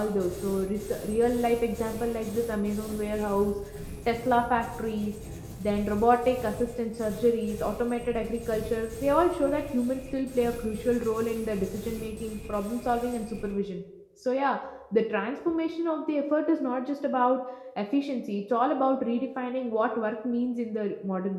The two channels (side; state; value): both; identical; correlation 1.00